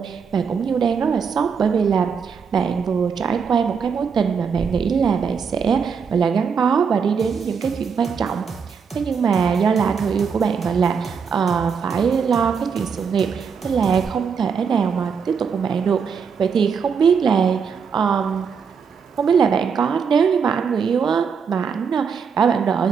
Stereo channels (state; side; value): quieter; left; 6.2 dB